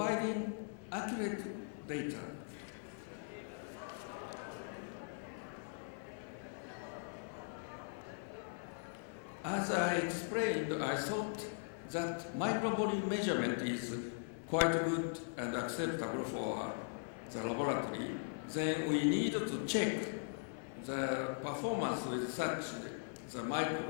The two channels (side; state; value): right; silent; 51 dB below the other